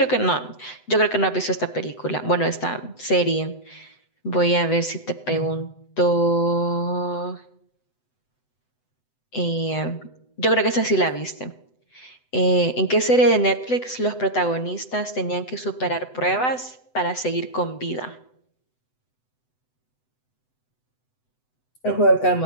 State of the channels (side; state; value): right; late; 7.9 ms